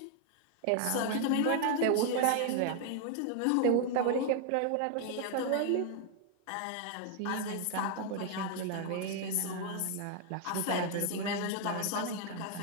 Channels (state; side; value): different; both; correlation 0.00